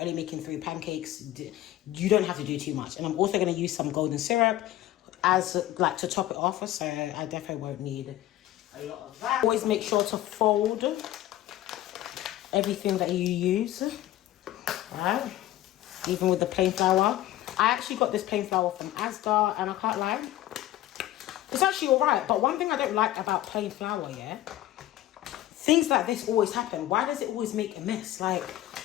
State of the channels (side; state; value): right; quieter; 14.2 dB